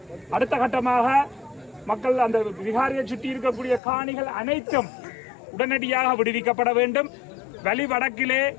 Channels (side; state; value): right; drops out; at 3.8 s